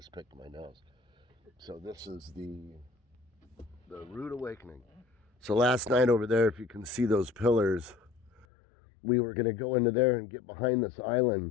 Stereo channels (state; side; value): drops out; right; at 8.5 s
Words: picked my nose. So this is the rude awakening. So last night over there, if you can see those pillars, we were going to go into there and get behind this